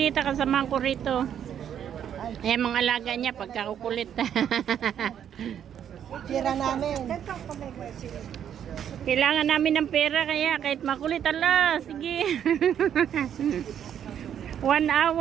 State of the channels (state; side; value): quieter; left; 9.3 dB